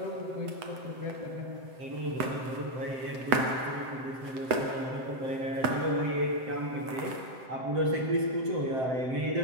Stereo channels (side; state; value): left; late; 7.7 ms